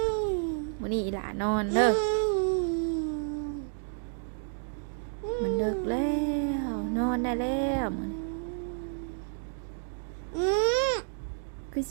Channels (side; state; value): left; silent; digital silence